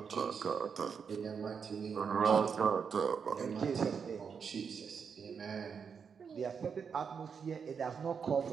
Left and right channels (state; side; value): quieter; left; 6.4 dB